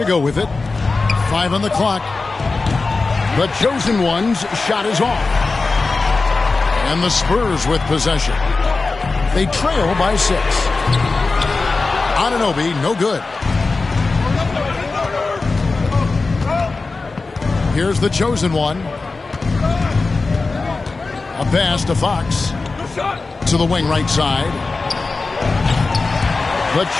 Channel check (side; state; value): right; quieter; 3.8 dB